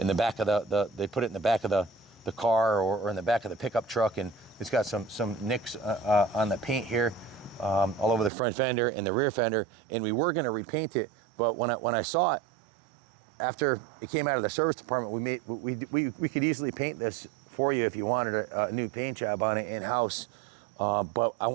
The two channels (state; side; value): drops out; left; at 8.3 s